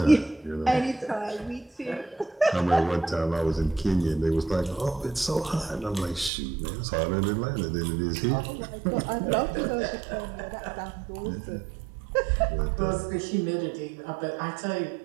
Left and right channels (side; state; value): left; drops out; at 6.3 s